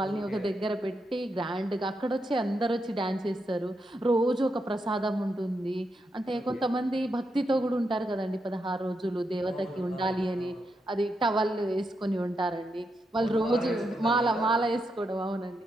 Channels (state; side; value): normal; both; correlation 0.83